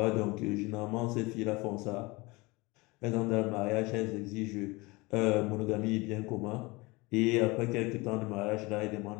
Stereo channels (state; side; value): quieter; right; 24.1 dB